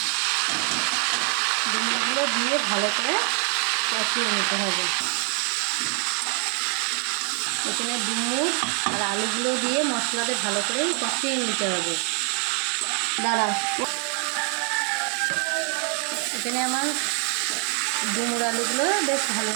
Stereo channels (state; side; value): quieter; left; 39.0 dB